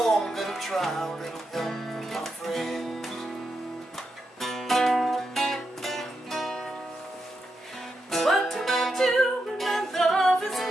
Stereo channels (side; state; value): both; normal; correlation 0.85